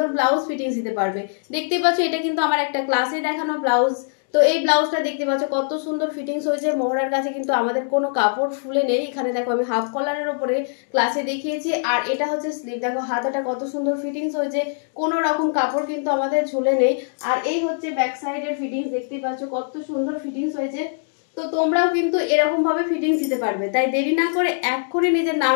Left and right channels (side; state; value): right; silent; digital silence